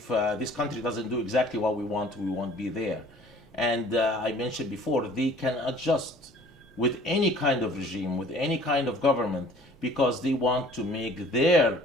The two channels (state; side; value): normal; both; correlation 0.51